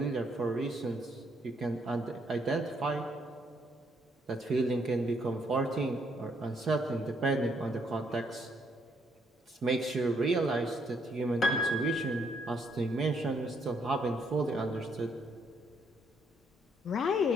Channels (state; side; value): normal; both; correlation 0.71